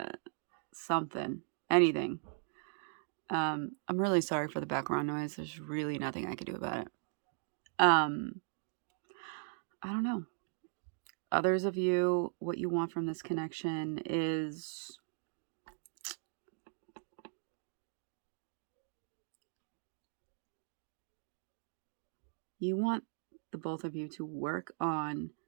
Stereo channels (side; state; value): left; silent; digital silence